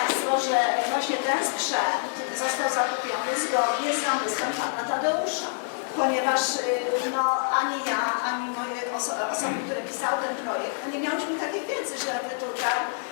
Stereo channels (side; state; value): right; silent; digital silence